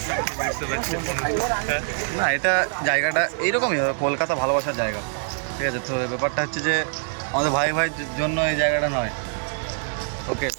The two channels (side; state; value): left; silent; 62 dB below the other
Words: বুঝতে পারছি না এটা জায়গাটা এইরকমই হবে, কলকাতা ভালোবাসার জায়গা, ঠিক আছে। তো ব্যাপারটা হচ্ছে যে আমাদের ভাই ভাই জন্য এই জায়গাটা নয়। ওকে,